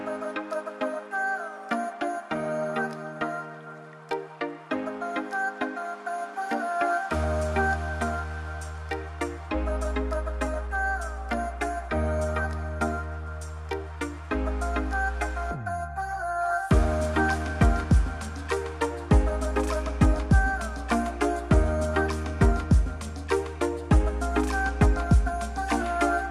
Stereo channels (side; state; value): both; identical; correlation 1.00